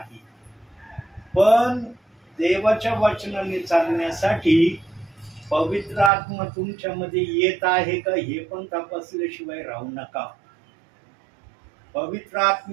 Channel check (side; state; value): left; drops out; at 6.1 s